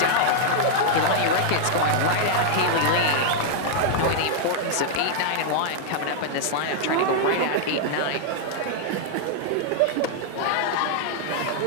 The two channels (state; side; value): different; both; correlation -0.01